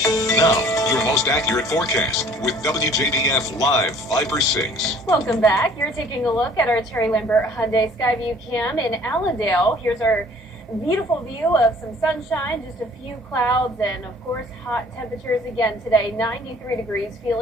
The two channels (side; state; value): both; normal; correlation 0.54